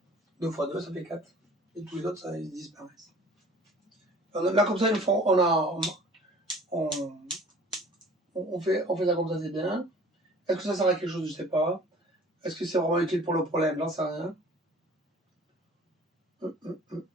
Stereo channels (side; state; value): both; normal; correlation 0.48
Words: 2 x 2, ça fait 4. Et tous les autres, ça, ils disparaissent. Là, comme ça, on fait ça comme ça, c'est bien. Est-ce que ça sert à quelque chose? Je ne sais pas. Est-ce que c'est vraiment utile pour le problème? J'en sais rien.